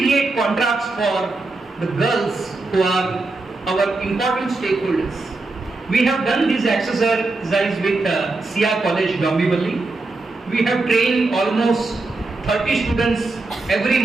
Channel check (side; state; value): left; quieter; 3.3 dB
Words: contracts for the girls who are our important stakeholders? We have done this exercise with Sia College, Bhiwandi. We have trained almost 30 students every